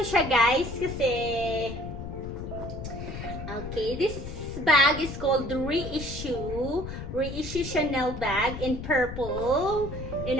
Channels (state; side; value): noise; left; rumble, 8 dB below the sound